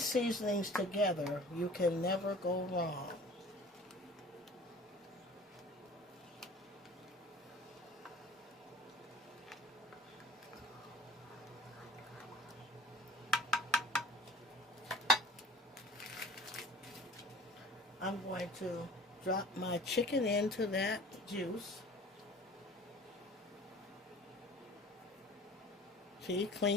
seasonings together, you can never go wrong. I'm going to drop my chicken into that juice. See,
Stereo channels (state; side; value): normal; both; correlation 0.46